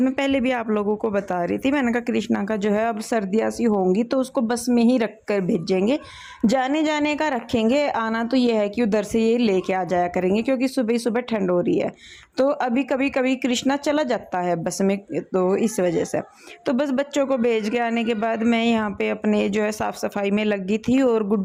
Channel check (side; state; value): both; identical; correlation 1.00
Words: मैं पहले भी आप लोगों को बता रही थी, मैंने कहा कृष्णा का जो है अब सर्दियाँ सी होंगी तो उसको बस में ही रख कर भेजेंगे, जाने जाने का रखेंगे, आना तो ये है कि उधर से ये लेके आ जाया करेंगे, क्योंकि सुबह सुबह ठंड हो रही है। तो अभी कभी कभी कृष्णा चला जाता है बस में, तो इस वजह से तो बस बच्चों को भेज के आने के बाद मैं यहाँ पे अपने जो है साफ़ सफाई में लगी थी, और